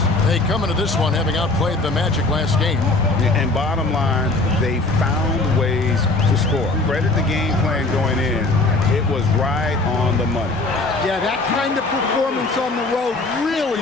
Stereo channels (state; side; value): quieter; right; 3.2 dB